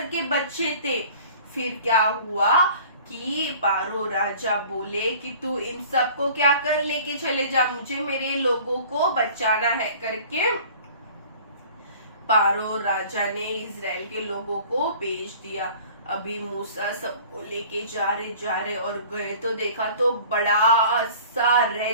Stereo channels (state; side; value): inverted; both; correlation -0.47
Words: के बच्चे थे। फिर क्या हुआ कि पारो राजा बोले कि तू इन सबको क्या कर, लेके चले जा, मुझे मेरे लोगों को बचाना है करके पारो राजा ने इजराइल के लोगों को भेज दिया। अभी मूसा सबको लेके जा रहे और गए तो देखा तो बड़ा सा